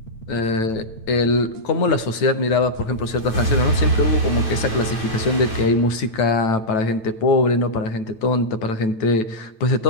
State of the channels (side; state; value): right; late; 9.1 ms